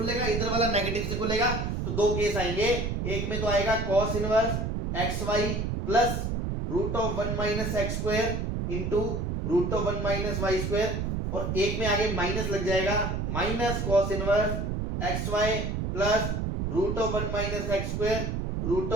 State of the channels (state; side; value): noise; right; rumble, 1 dB below the sound